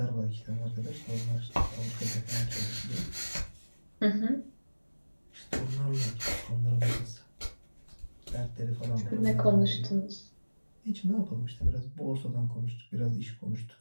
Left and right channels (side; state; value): both; inverted; correlation -1.00